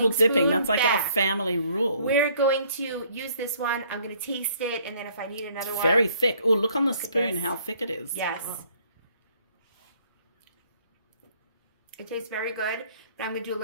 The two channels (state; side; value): inverted; both; correlation -0.62